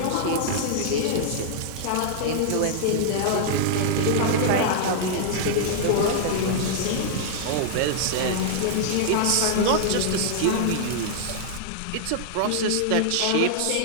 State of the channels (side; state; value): both; different; correlation -0.01